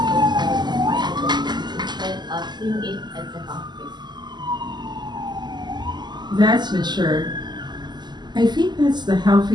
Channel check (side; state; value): left; late; 0.21 ms